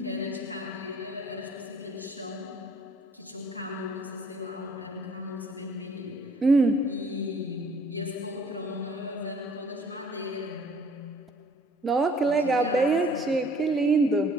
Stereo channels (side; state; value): both; normal; correlation 0.57